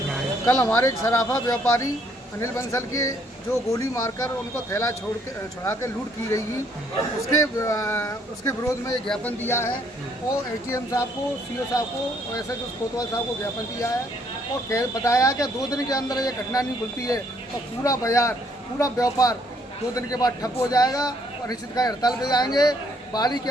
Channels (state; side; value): normal; both; correlation 0.67